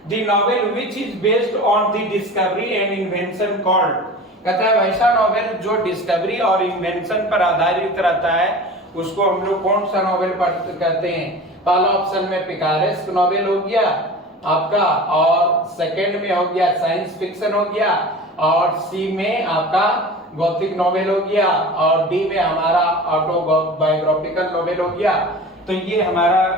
the novel which is based on the discovery and invention called. कहता है वैसा नॉवेल जो डिस्कवरी और इन्वेंशन पर आधारित रहता है उसको हम लोग कौन सा नॉवेल कहते हैं। पहला ऑप्शन में पिकारेस्क नॉवेल हो गया आपका, और सेकंड में हो गया साइंस फिक्शन हो गया, और सी में आपका गॉथिक नॉवेल हो गया, और डी में हमारा ऑटोबायोग्राफिकल नॉवेल हो गया। तो ये हमारा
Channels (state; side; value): normal; both; correlation 0.36